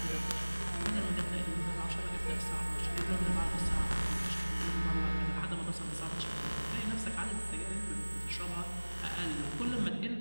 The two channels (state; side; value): inverted; both; correlation -1.00